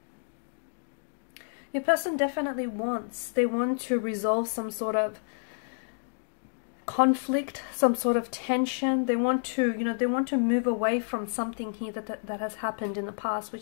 definitely they want to resolve some sort of conflict, some sort of tension. They want to, you know, they want to move away from something here that has happened in the past,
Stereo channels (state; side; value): silent; right; digital silence